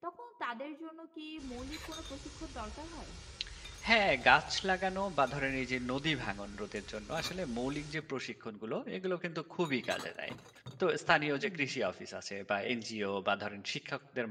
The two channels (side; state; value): both; identical; correlation 1.00